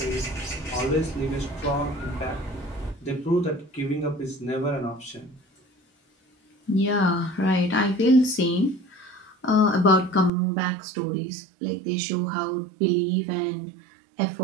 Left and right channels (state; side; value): drops out; left; at 10.3 s